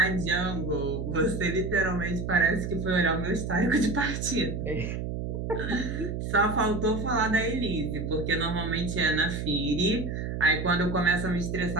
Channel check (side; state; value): right; noise; hum, 4 dB below the sound